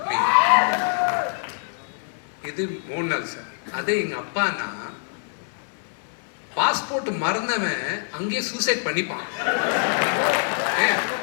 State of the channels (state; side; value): silent; right; digital silence